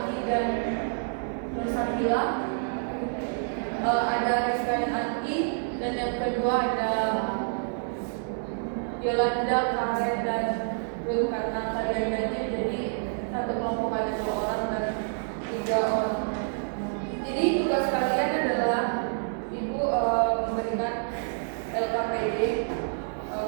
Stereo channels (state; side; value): silent; left; digital silence